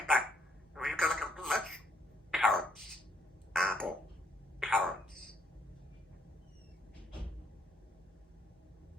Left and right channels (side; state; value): both; normal; correlation 0.70